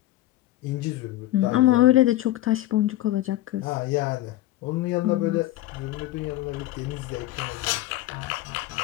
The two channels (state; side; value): quieter; right; 15.3 dB